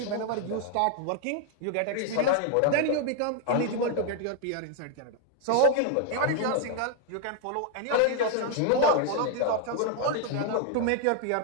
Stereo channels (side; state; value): both; different; correlation 0.00